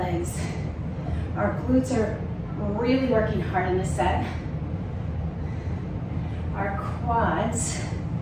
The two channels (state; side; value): identical; both; correlation 1.00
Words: Our glutes are really working hard in this set. Our quads,